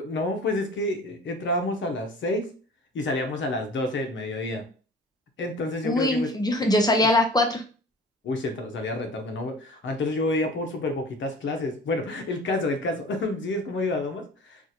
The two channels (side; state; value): both; normal; correlation 0.43